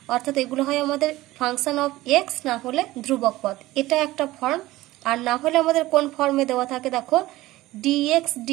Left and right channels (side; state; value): left; quieter; 17.5 dB